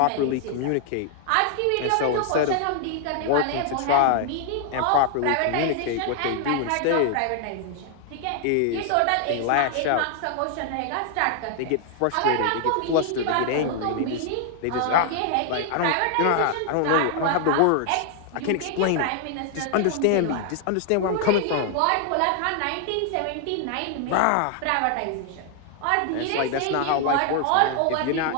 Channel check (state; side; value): different; both; correlation 0.00